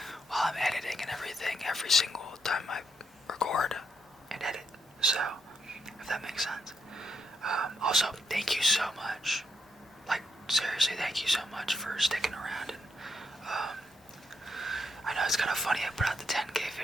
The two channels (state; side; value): normal; both; correlation 0.78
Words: while I'm editing and everything every single time I record and edit. So, if that makes sense. Also, thank you so much. Like, seriously, thank you so much for sticking around. And I know it's kind of funny I put out the 10K